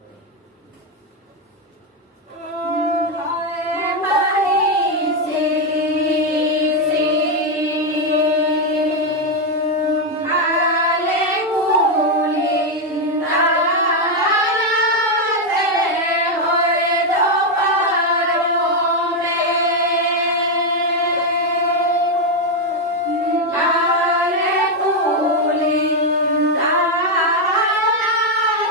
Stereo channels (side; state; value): both; normal; correlation 0.04